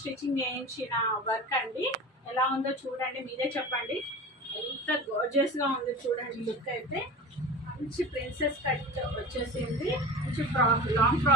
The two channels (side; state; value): both; normal; correlation 0.34